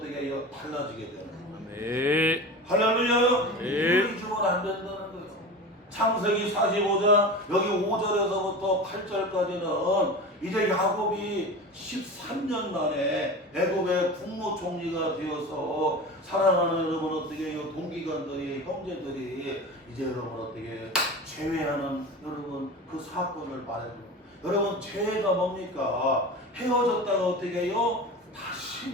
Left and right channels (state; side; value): normal; both; correlation 0.31